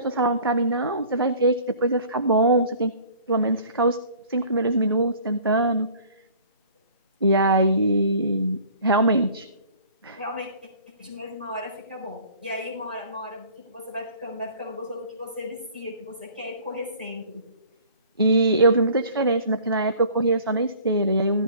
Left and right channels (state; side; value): inverted; both; correlation -0.49